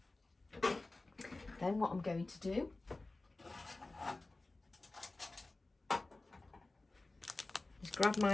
Then what I'm going to do is grab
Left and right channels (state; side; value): quieter; right; 3.1 dB